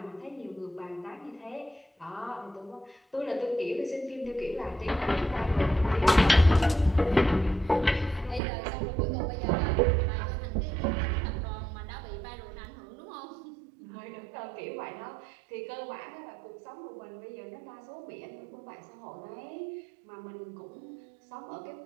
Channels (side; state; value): left; drops out; at 8.4 s